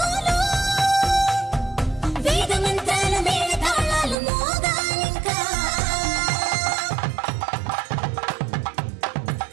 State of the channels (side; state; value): left; drops out; at 4.2 s